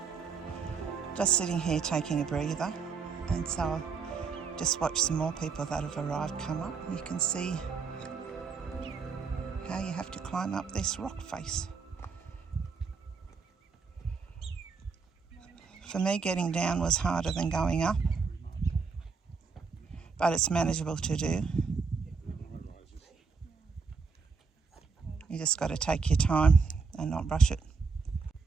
Just sitting here taking a breather, and so I'll just watch some more people that have arrived come up. You can see how you have to climb up this rock face. For me, getting down was harder than going up, but it's manageable to do. You just got to take your time and not rush it.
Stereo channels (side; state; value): left; quieter; 5.1 dB